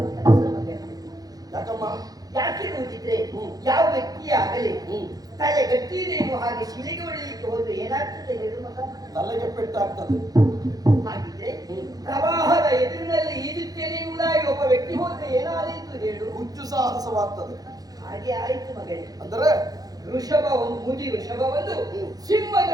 ಕೆಲಸ ಮಗನೇ. ಯಾಕಮ್ಮ? ಯಾಕೆ ನೋಡಿದ್ರೆ ಯಾವ ವ್ಯಕ್ತಿಯಾಗಲಿ ತಲೆ ಗಟ್ಟಿದೇನು ಹಾಗೆ ಶಿಲೆಗೆ ಹೊಡೆಯಲಿಕ್ಕೆ ಹೋದ್ರೆ ಏನಾಗ್ತದೆ ಹೇಳು ಮಗ? ತಲೆಗೆ ಪೆಟ್ಟಾಗ್ತದೆ. ಹಾಗಿದ್ರೆ ಪ್ರವಾಹದ ಎದುರಿನಲ್ಲಿ ಈಜುತ್ತೇನೆ ಎಂಬುದಾಗಿ ಒಬ್ಬ ವ್ಯಕ್ತಿ ಹೋದ್ರೆ ಏನಾದೀತು ಹೇಳು? ಹುಚ್ಚು ಸಾಹಸವಾಗ್ತದೆ. ಹಾಗೆ ಆಯ್ತು ಮಗನೇ. ಅಂದರೆ ವೃಷಭ ಒಂದು ಮುದಿ ವೃಷಭವನ್ನು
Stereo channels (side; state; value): left; late; 0.18 ms